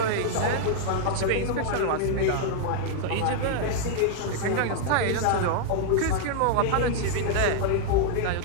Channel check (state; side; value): different; both; correlation -0.01